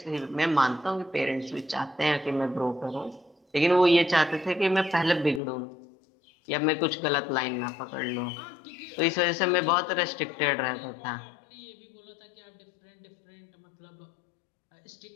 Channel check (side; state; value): right; drops out; at 5.4 s